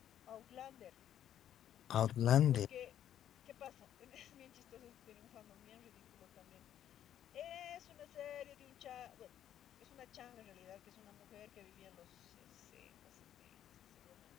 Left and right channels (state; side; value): quieter; right; 10.7 dB